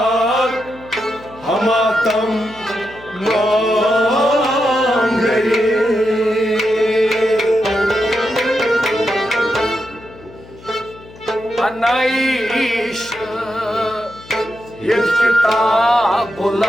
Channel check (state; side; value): noise; left; hum, 21 dB below the sound